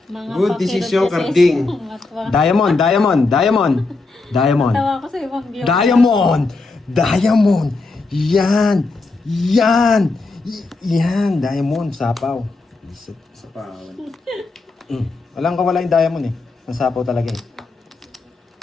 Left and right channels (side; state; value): right; quieter; 3.6 dB